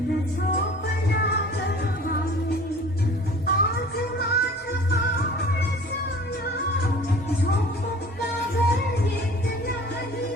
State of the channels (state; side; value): normal; both; correlation 0.46